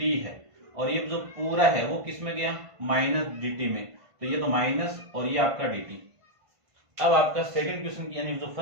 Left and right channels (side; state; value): left; late; 1.5 ms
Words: है और ये जो पूरा है वो किस में गया माइनस dt में, तो ये तो माइनस और ये आपका dt। अब आपका सेकंड क्वेश्चन यानी जो